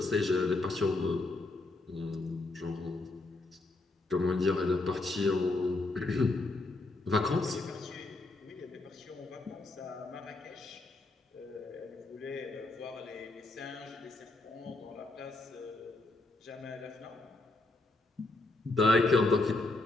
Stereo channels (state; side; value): quieter; right; 3.1 dB